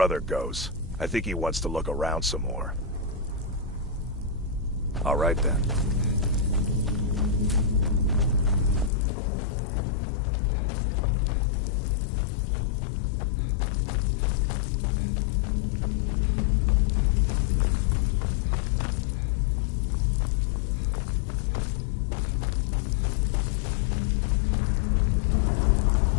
goes. I think he wants to look around some more. All right then.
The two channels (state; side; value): drops out; right; at 8.9 s